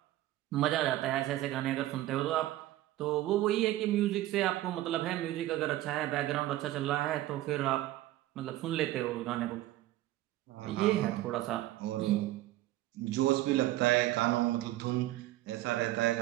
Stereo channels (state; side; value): quieter; left; 15.4 dB